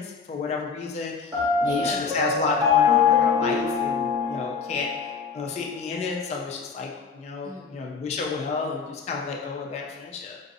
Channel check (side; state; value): right; quieter; 5.6 dB